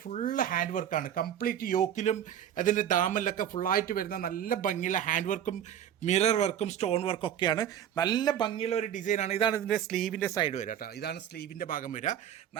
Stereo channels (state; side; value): quieter; left; 10.0 dB